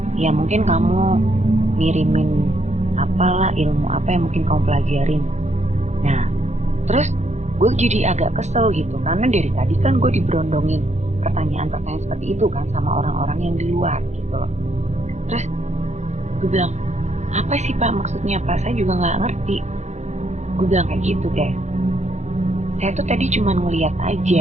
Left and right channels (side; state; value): left; late; 0.33 ms